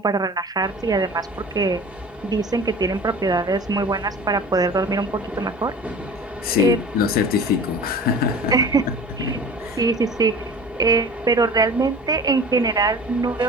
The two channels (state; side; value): normal; both; correlation 0.40